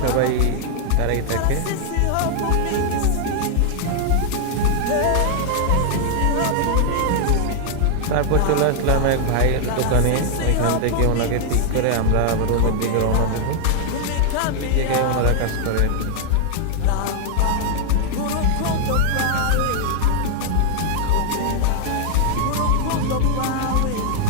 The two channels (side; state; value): both; different; correlation 0.00